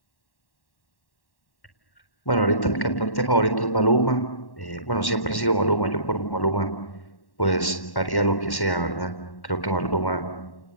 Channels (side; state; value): right; late; 1.1 ms